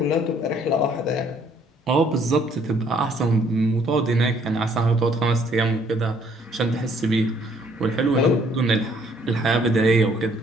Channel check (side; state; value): both; normal; correlation 0.63